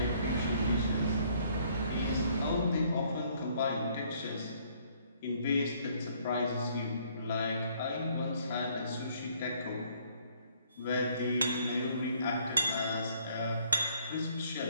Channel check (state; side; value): inverted; both; correlation -0.64